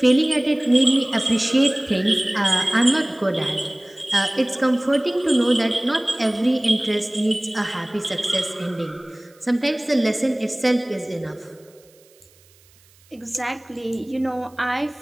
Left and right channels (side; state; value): right; noise; hiss, 30 dB below the sound